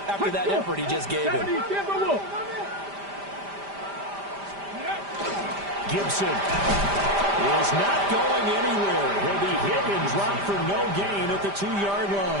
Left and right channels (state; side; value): late; left; 5.0 ms